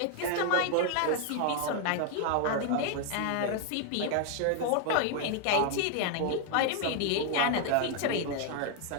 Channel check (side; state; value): both; different; correlation 0.00